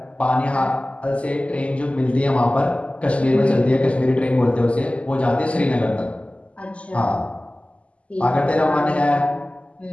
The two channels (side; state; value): right; late; 0.061 ms